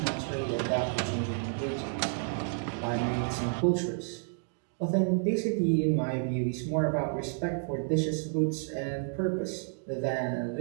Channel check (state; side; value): silent; left; 57 dB below the other